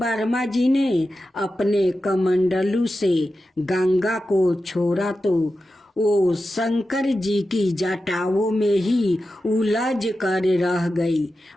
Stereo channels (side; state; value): both; normal; correlation 0.92